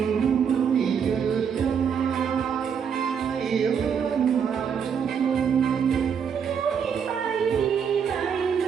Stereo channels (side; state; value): left; quieter; 7.2 dB